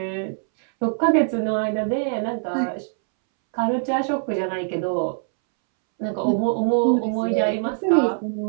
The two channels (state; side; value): silent; left; 64 dB below the other